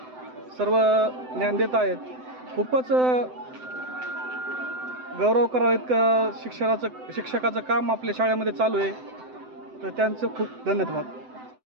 सर्व ज्ञान देत आहेत. खूपच गौरव करावं इतकं शिक्षकाचं काम आपल्या शाळेमध्ये चालू आहे. तर त्यांचं खूप धन्यवाद.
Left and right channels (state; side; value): late; left; 7.9 ms